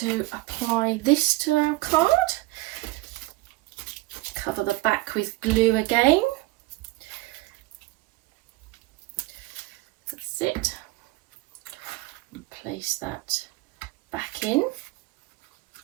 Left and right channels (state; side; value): quieter; left; 20.4 dB